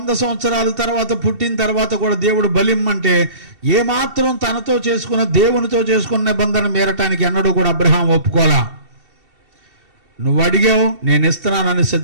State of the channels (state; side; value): late; left; 2.7 ms